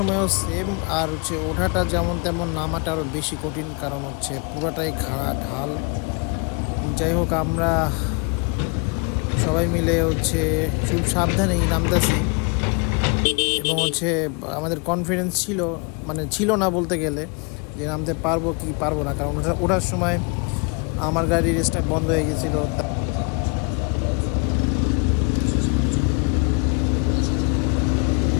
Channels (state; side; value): quieter; right; 34.6 dB